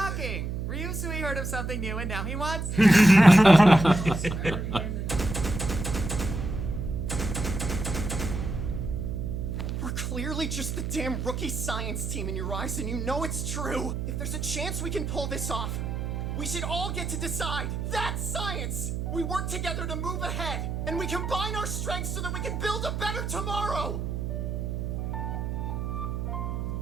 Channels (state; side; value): noise; right; hum, 3 dB below the sound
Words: Ryusui heard of something new and now he wants... We're clearly just the damn rookie science team in your eyes, and you know it's true. If there's a chance we can pull this off, we should all get to decide. That's science! We work together to move ahead, and we combine our strengths so that we can build a better tomorrow!